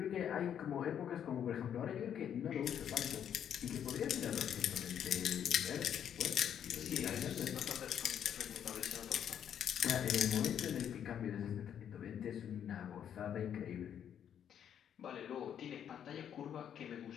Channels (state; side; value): quieter; right; 9.2 dB